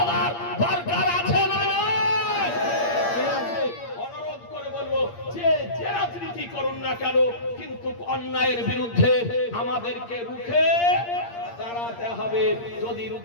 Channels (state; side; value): late; right; 8.6 ms